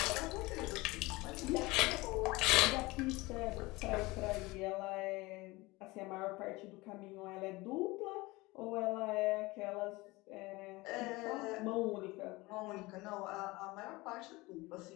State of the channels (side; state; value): right; quieter; 22.0 dB